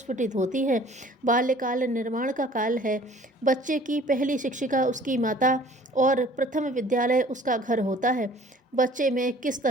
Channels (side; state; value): both; normal; correlation 0.52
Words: होती हैं। बाल्यकाल निर्माण का काल है। बच्चे की पहली शिक्षिका उसकी माता और प्रथम विद्यालय उसका घर होता है। बच्चे में किस